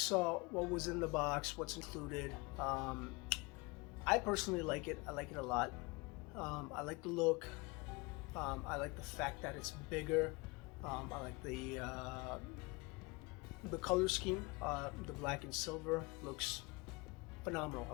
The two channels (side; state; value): right; quieter; 26.1 dB